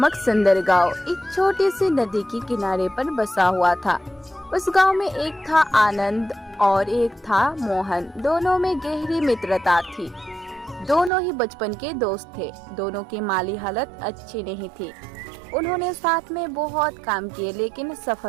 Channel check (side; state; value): left; drops out; at 11.1 s